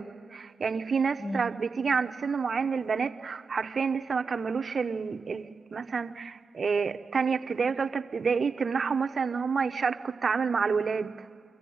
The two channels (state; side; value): quieter; left; 5.1 dB